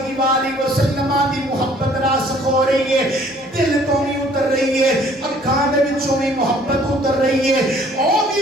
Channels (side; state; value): both; normal; correlation 0.57